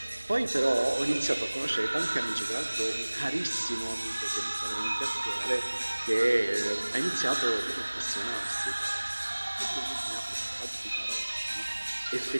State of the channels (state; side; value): inverted; both; correlation -1.00